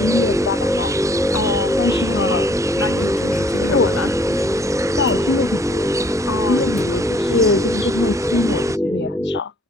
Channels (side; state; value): both; normal; correlation 0.60